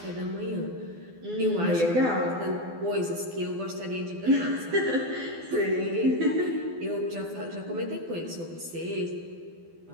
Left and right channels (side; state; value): left; late; 12 ms